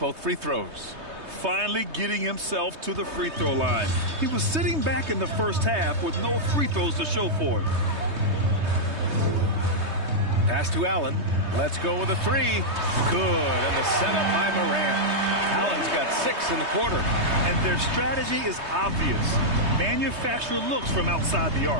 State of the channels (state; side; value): late; left; 3.2 ms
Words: free throws. Finally getting himself to the free throw line. He was sitting back in the first half with no free throws to show for it. Pass to Allen. Let's go with a 3. Good. And the setup by Morant. Allen's got 6 in the quarter. And their strategy is obvious. Manufacture looks from outside the